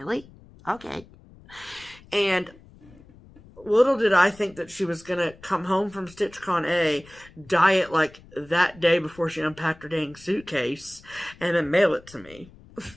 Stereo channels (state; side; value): noise; left; rumble, 23 dB below the sound